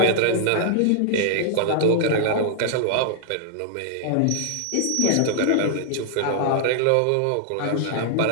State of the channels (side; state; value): both; different; correlation -0.01